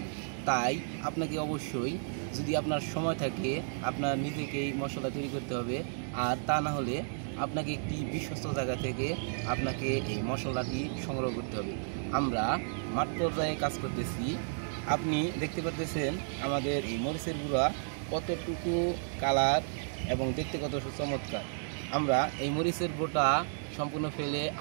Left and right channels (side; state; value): left; silent; digital silence